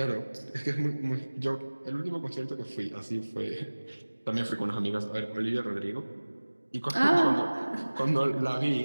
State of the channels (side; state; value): both; inverted; correlation -1.00